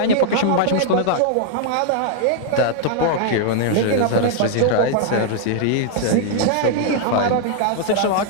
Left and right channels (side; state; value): both; different; correlation -0.01